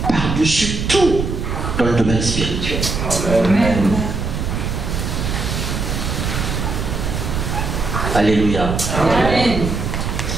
par-dessus tout dans le domaine spirituel. Amen. Alléluia. Amen.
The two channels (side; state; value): right; noise; rumble, 2 dB below the sound